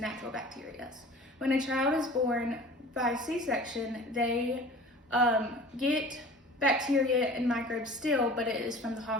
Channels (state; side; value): normal; both; correlation 0.42